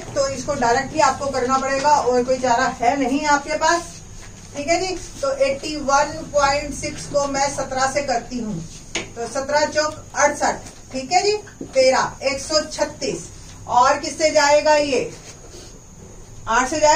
तो इसको डायरेक्टली आपको करना पड़ेगा और कोई चारा है नहीं आपके पास। ठीक है जी। तो 81.6 को मैं 17 से करती हूँ तो 17 चौक 68। ठीक है जी। 13 136 और किससे जाएगा? ये 8 से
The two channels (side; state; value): both; identical; correlation 1.00